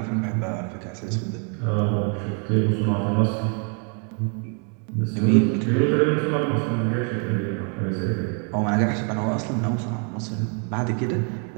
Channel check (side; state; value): left; quieter; 39.9 dB